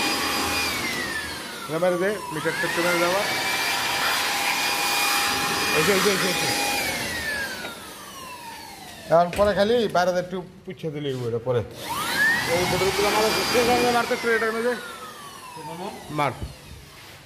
মেরে দে, মিটারটা একটু মেরে দেওয়া। এখন পরে খালি বাইরে একটু পুছে দিলি ওইটা পরে মারতে একটু এটা মেরে মার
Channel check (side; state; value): both; identical; correlation 1.00